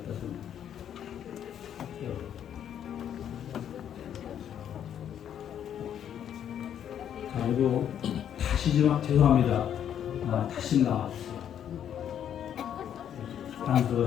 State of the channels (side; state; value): right; quieter; 9.6 dB